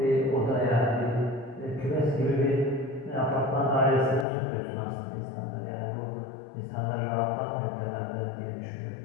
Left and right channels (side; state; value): right; drops out; at 4.2 s